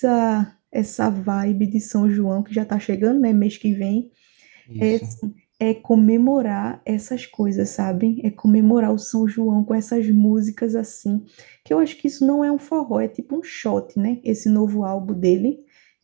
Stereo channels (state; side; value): quieter; left; 35.4 dB